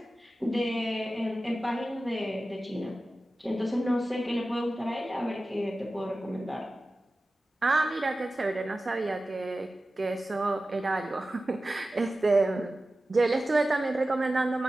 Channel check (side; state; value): both; normal; correlation 0.95